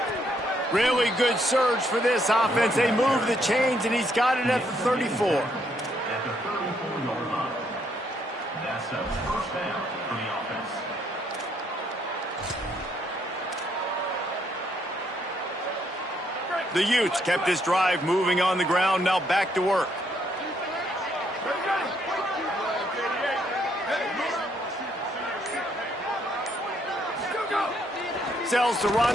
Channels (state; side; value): normal; both; correlation 0.72